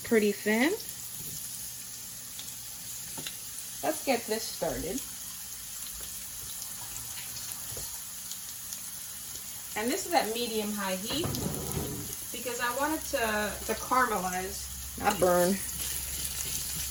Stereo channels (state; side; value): identical; both; correlation 1.00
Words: pretty thin. Let's get this started. And this is at medium-high heat because I want it to caramelize, not burn.